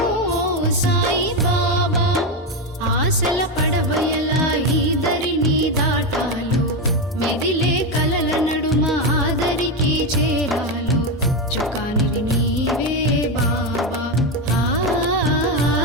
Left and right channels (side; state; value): both; normal; correlation 0.11